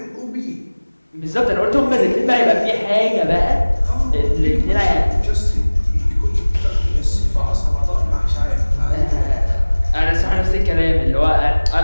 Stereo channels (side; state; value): both; inverted; correlation -1.00